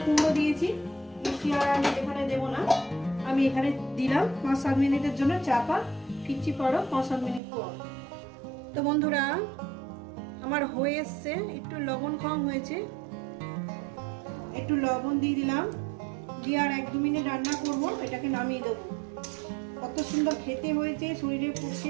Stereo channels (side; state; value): left; drops out; at 7.4 s